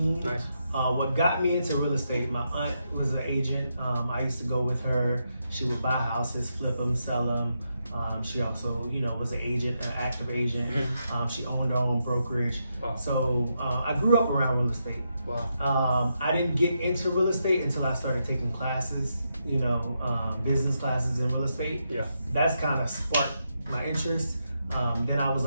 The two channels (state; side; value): inverted; both; correlation -0.82